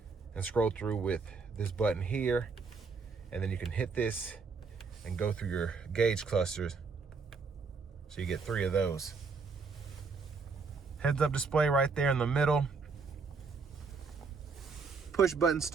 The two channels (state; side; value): quieter; left; 4.7 dB